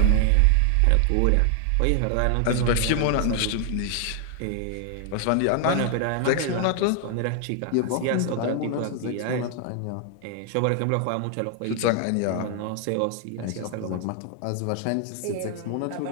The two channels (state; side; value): different; both; correlation 0.00